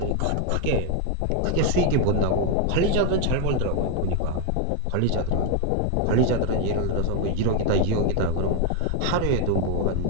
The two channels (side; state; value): both; different; correlation 0.01